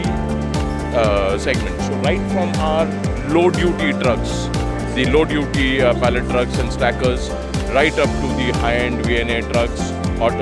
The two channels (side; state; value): both; identical; correlation 1.00